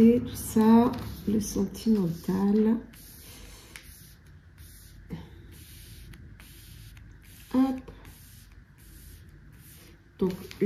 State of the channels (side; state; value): both; identical; correlation 1.00